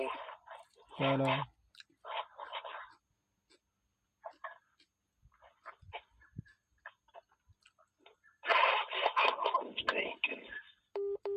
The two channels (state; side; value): identical; both; correlation 1.00